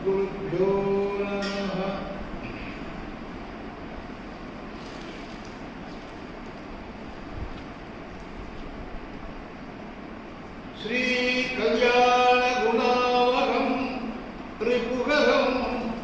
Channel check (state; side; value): identical; both; correlation 1.00